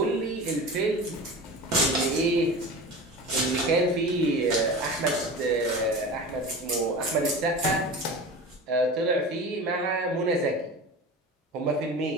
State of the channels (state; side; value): normal; both; correlation 0.33